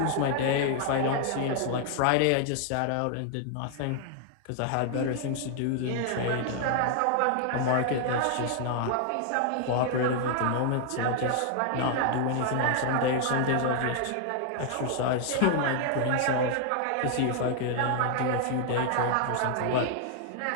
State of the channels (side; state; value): both; different; correlation 0.00